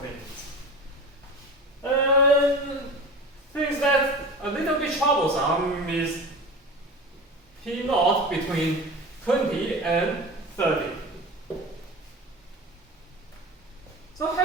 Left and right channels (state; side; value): normal; both; correlation 0.32